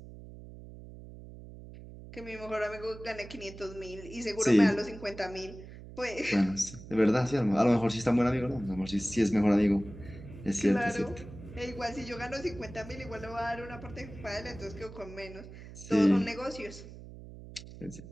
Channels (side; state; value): right; noise; hum, 15 dB below the sound